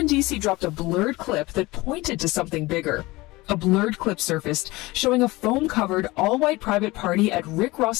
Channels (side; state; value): right; quieter; 21.0 dB